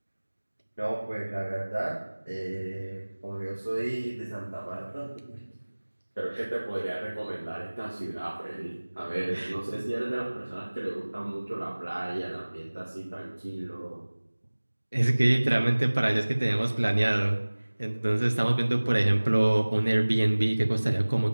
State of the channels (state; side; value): inverted; both; correlation -1.00